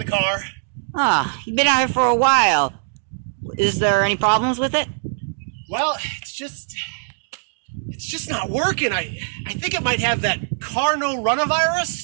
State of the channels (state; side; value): silent; left; digital silence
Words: car. You've been out here for a while. Is there any problems with it? Well, it's just not working. I think it might have that